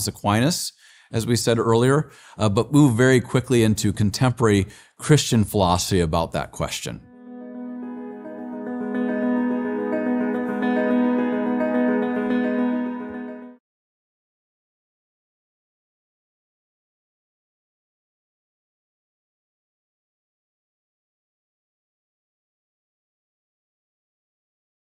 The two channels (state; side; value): identical; both; correlation 1.00